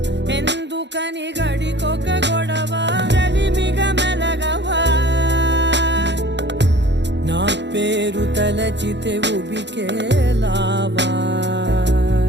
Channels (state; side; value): late; left; 0.51 ms